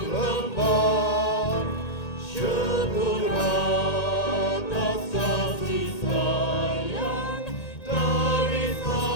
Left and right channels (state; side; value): late; right; 1.8 ms